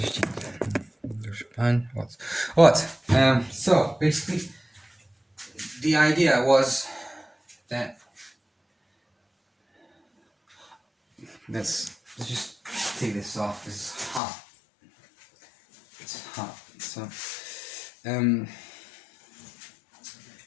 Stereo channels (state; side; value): drops out; right; at 14.2 s